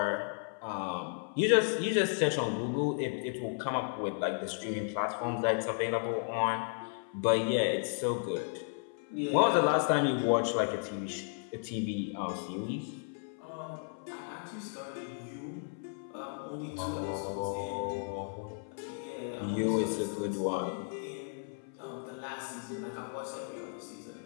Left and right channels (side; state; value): right; silent; 55 dB below the other